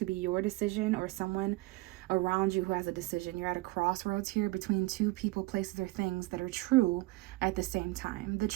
be your decision or someone around you who has a decision. You're at a crossroads here between two people, places, or things that are true at the same time. The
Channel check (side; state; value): left; quieter; 20.6 dB